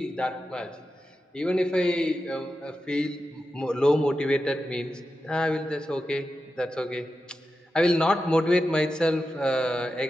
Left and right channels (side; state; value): both; normal; correlation 0.91